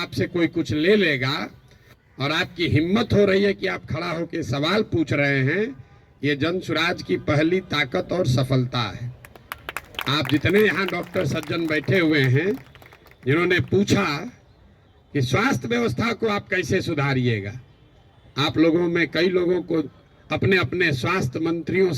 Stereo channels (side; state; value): both; identical; correlation 1.00